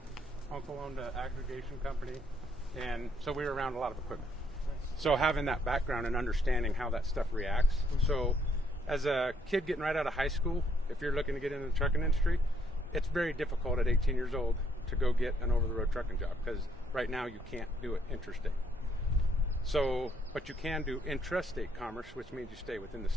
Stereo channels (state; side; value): normal; both; correlation 0.70